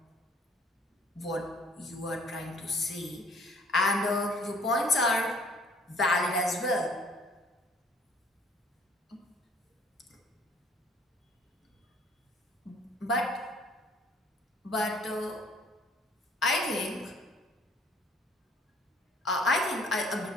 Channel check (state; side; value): normal; both; correlation 0.58